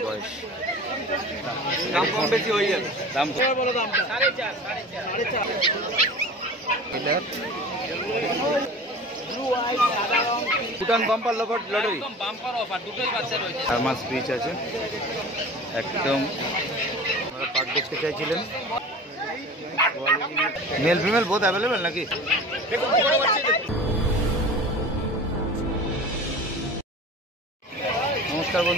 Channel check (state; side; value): normal; both; correlation 0.38